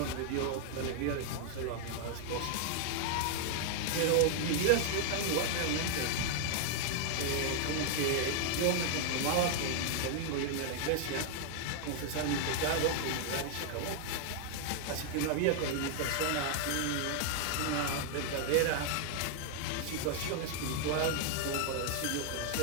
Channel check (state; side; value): different; both; correlation 0.00